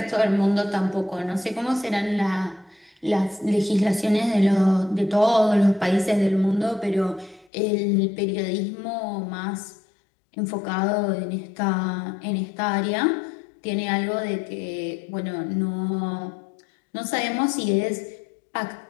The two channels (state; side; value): drops out; right; at 7.5 s